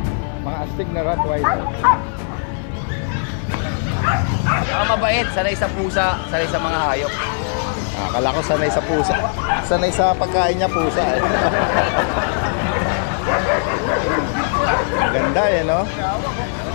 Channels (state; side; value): silent; right; digital silence